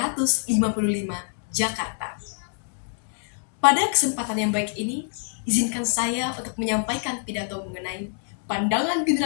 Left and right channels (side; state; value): right; silent; 61 dB below the other